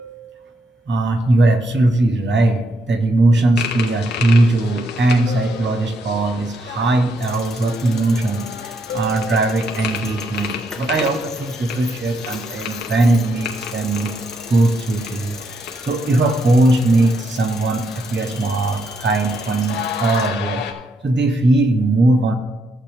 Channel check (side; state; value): both; normal; correlation 0.77